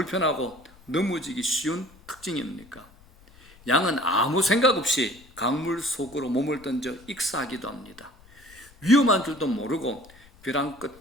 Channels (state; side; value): noise; left; rumble, 25 dB below the sound